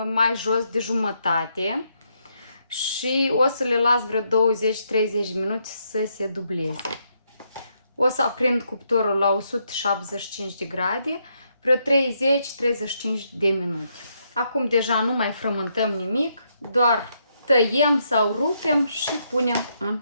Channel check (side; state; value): both; inverted; correlation -0.77